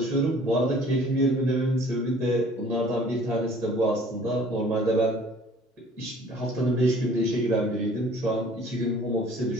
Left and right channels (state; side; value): normal; both; correlation 0.52